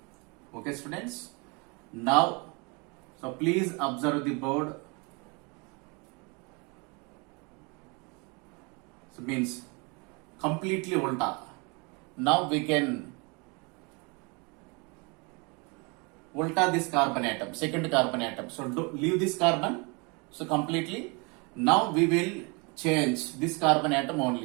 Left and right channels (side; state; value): left; quieter; 30.4 dB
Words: Okay, students. Now, so please observe the board. So means completely ulta. Now we can ulta this carbon atom, second carbon atom. So leave this carbon. So completely. Now we will change this carbon atom